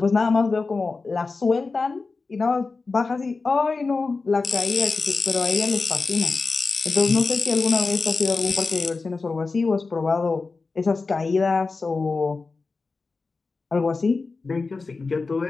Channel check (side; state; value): right; quieter; 4.1 dB